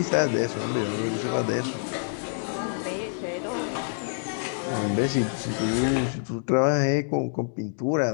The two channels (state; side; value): silent; right; digital silence